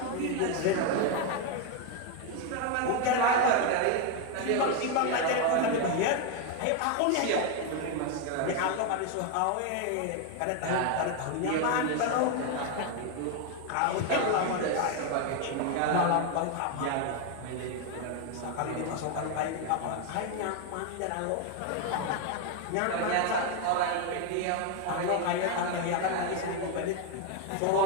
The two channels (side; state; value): both; different; correlation 0.01